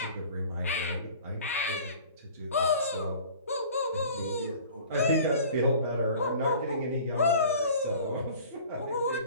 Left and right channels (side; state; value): both; inverted; correlation -0.45